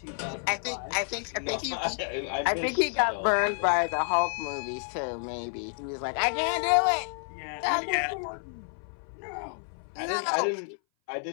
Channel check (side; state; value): right; silent; 58 dB below the other